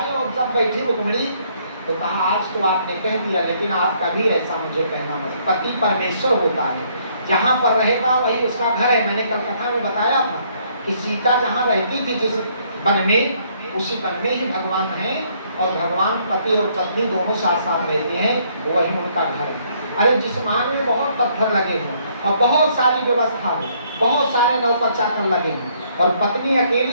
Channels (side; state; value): both; inverted; correlation -0.66